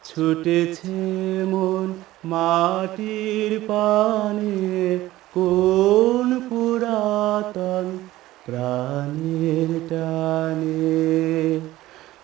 ছুটেছে মন মাটির পানে, কোন পুরাতন প্রাণের টানে।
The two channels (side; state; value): left; quieter; 16.0 dB